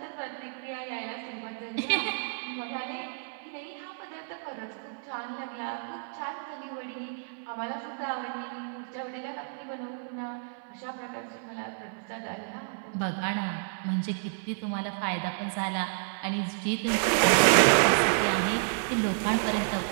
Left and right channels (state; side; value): silent; left; digital silence